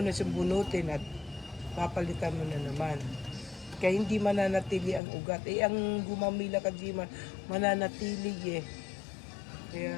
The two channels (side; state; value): right; drops out; at 5.0 s